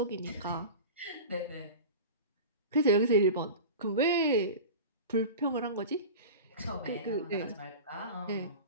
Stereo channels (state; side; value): inverted; both; correlation -0.32